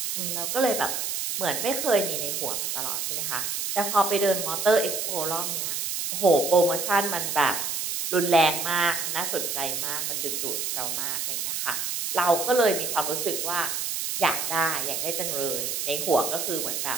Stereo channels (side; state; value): right; noise; hiss, 2 dB below the sound